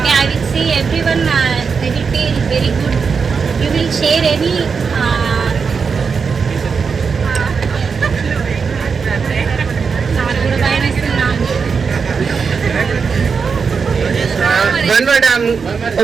I will see everyone, they will feel very good. You will share any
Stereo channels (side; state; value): left; quieter; 5.6 dB